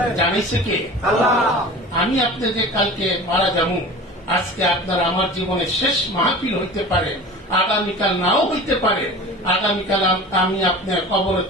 জানিছে কে? আমি আপনাদের কালকে মারা যাবো, আজকে আপনার আমার জীবনের শেষ মাহফিল হইতে পারে, আগামীকাল নাও হইতে পারে, আগামীকাল আমি আপনার কবরে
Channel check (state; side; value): normal; both; correlation 0.37